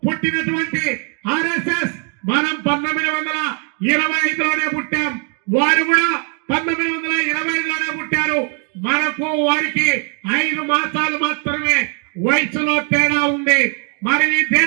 పుట్టినటువంటి ఆర్ఎస్ఎస్ మనం 1925లోనే పుట్టాం, వారు కూడా 1925లోనే పుట్టారు. మనకు వారికి 5 మాసాలు మాత్రమే వయసులో తేడా ఉంది. మరి ఈ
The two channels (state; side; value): quieter; left; 39.5 dB